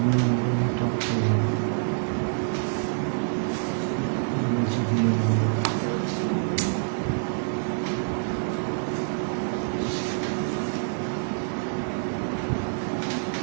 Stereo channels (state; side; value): silent; left; digital silence